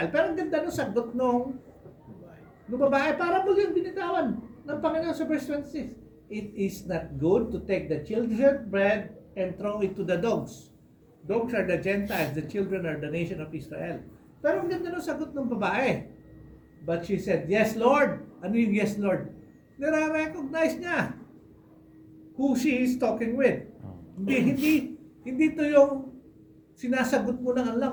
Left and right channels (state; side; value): identical; both; correlation 1.00